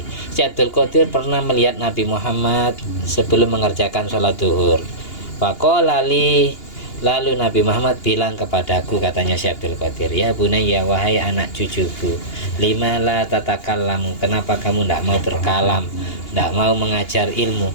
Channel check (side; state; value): right; late; 2.8 ms